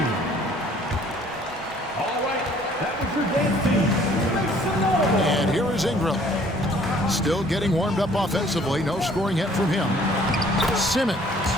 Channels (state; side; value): normal; both; correlation 0.57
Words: And here is Ingram. Still getting warmed up offensively. No scoring yet from him. Simmons.